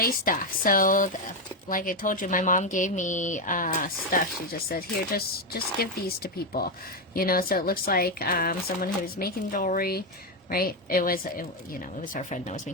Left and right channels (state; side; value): normal; both; correlation 0.07